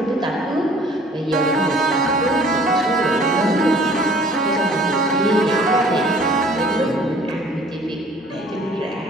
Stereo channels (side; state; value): both; normal; correlation 0.53